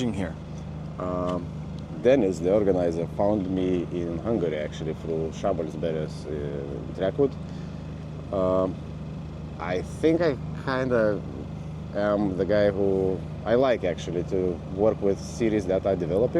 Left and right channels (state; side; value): identical; both; correlation 1.00